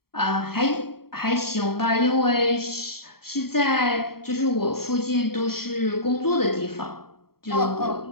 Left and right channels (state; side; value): late; right; 0.94 ms